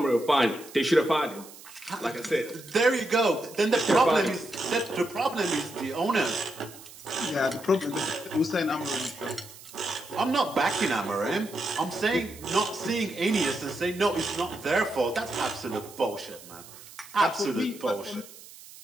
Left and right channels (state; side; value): noise; right; hiss, 18 dB below the sound